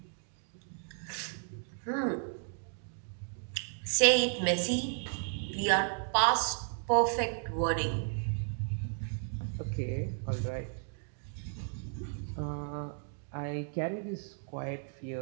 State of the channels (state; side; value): silent; left; 55 dB below the other